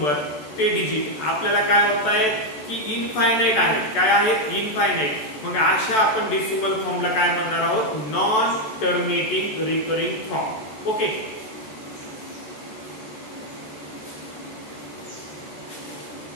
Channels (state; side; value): late; right; 14 ms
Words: ते डिजिट आपल्याला काय होत आहेत की इनफायनाइट आहेत. काय आहेत इनफायनाइट. मग अशा आपण डेसिमल फॉर्मला काय म्हणणार आहोत non terminating recurring form. Okay,